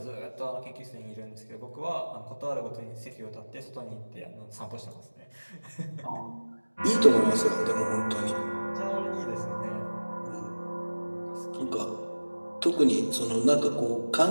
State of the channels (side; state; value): both; inverted; correlation -1.00